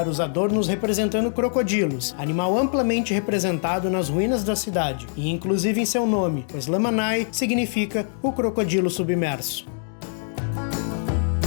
os adornos representando crocodilos, animal amplamente representado nas ruínas da cidade, e inclusive em seu nome, pois Lamanai significa o crocodilo submerso.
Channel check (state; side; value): silent; right; digital silence